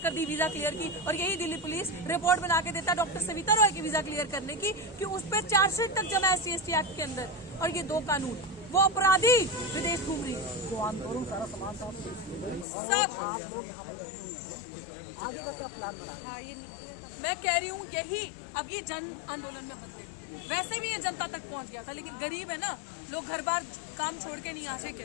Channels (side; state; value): right; drops out; at 12.7 s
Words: दी वीजा क्लियर की, और यही दिल्ली पुलिस रिपोर्ट बना के देता डॉक्टर सविता रॉय की वीजा क्लियर करने की कि उस पर चार्जशीट तक जमा है SC/ST एक्ट के अंदर। और ये 2 कानून, वो अपराधी विदेश घूम रही, जो आंदोलन सारा समाज सब आगे का क्या प्लान बना? मैं कह रही हूँ यही अब ये जन आंदोलन में बन गई। वैसे भी ये जनता तक पहुंच गया था, लेकिन गरीब है ना, लोग घर बार काम छोड़ के नहीं आ सके।